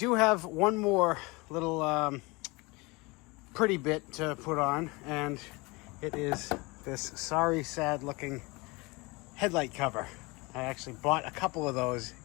have one more little pretty bit to put on, and it is this sorry, sad looking headlight cover. I actually bought a couple of those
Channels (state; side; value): quieter; right; 25.2 dB